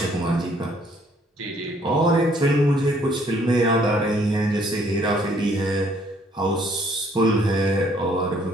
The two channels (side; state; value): both; normal; correlation 0.63